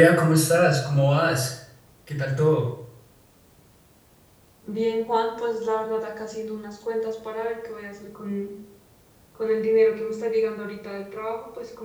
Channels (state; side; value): identical; both; correlation 1.00